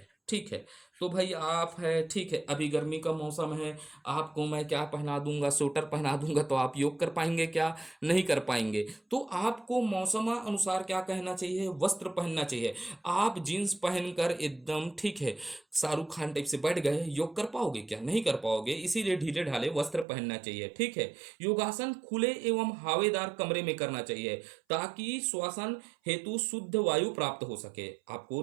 ठीक है। तो भाई आप है, ठीक है, अभी गर्मी का मौसम है, आपको मैं क्या पहना दूंगा, स्वेटर पहना दूंगा, तो आप योग कर पाएंगे क्या, नहीं कर पाएंगे। तो आपको मौसम अनुसार क्या कहना चाहिए, वस्त्र पहनना चाहिए। आप जीन्स पहनकर एकदम, ठीक है, शाहरुख खान टाइप से बैठ गए, योग कर पाओगे क्या, नहीं कर पाओगे। इसीलिए ढीले ढाले वस्त्र पहनना चाहिए, ठीक है। योगासन खुले एवं हवादार कमरे में करना चाहिए, ताकि श्वसन हेतु शुद्ध वायु प्राप्त हो सके। आपको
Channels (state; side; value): drops out; left; at 20.1 s